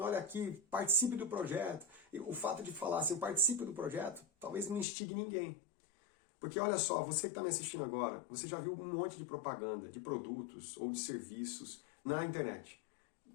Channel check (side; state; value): right; drops out; at 4.9 s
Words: olha aqui, participe do projeto. E o fato de falar assim, participe do projeto, talvez não instigue ninguém. Porque olha só, você que está me assistindo agora, você já viu um monte de propaganda, de produtos ou de serviços na internet.